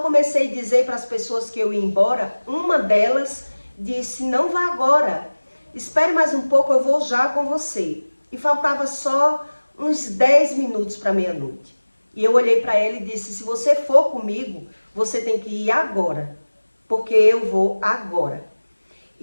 a dizer para as pessoas que eu ia embora, uma delas disse, não vá agora, espere mais um pouco, eu vou já com você. E faltava só uns 10 minutos para meia-noite. E eu olhei para ela e disse, se você for comigo, você tem que ir agora, porque eu vou agora.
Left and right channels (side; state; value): both; inverted; correlation -1.00